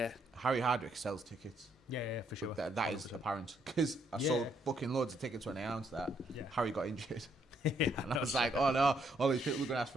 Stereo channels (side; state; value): both; normal; correlation 0.72